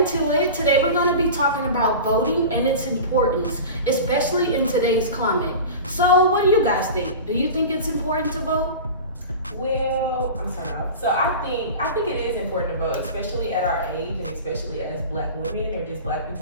it. Today we're going to be talking about voting and its importance, especially in today's climate. So what do you guys think? Do you think it's important to vote? Well, I'm sorry. So I think it is important to vote, especially at our age and especially as Black women or just Black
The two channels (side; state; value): both; inverted; correlation -0.32